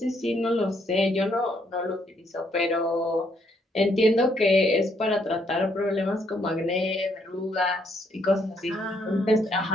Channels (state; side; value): normal; both; correlation 0.72